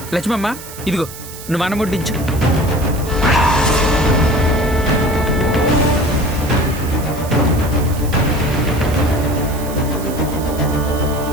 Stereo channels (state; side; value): noise; right; hiss, 14 dB below the sound